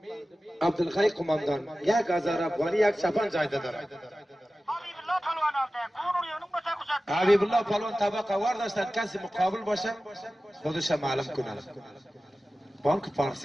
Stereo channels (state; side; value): normal; both; correlation 0.96